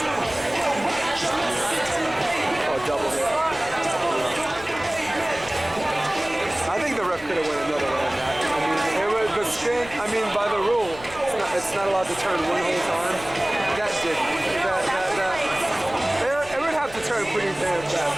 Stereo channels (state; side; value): noise; left; rumble, 18 dB below the sound